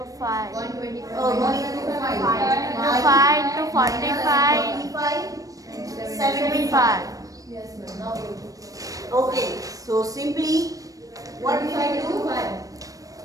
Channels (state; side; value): late; left; 0.17 ms